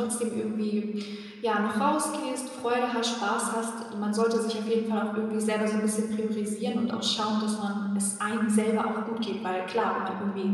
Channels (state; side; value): identical; both; correlation 1.00